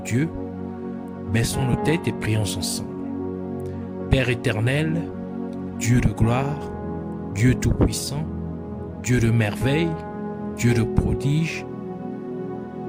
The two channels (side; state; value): both; identical; correlation 1.00